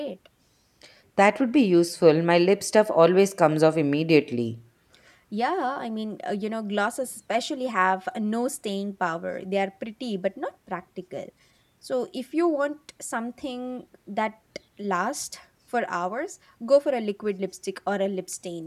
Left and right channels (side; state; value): both; identical; correlation 1.00